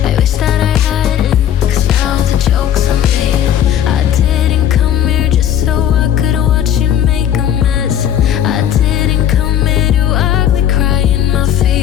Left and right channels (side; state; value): right; quieter; 10.2 dB